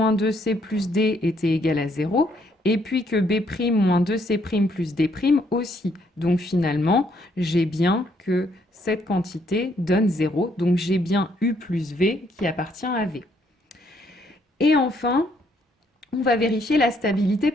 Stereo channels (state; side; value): normal; both; correlation 0.70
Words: 2C plus D était égal à 0 et puis que B' moins 2C' plus D' aussi. Donc finalement, j'ai bien que cette quantité donne 0. Donc j'ai bien U plus V qui appartient à V. Et enfin, on va vérifier la stabilité